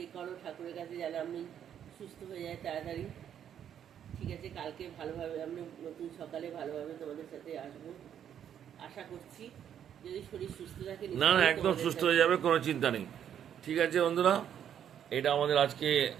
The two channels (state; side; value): quieter; left; 9.4 dB